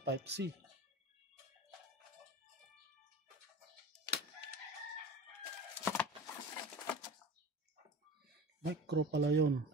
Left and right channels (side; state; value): both; normal; correlation 0.33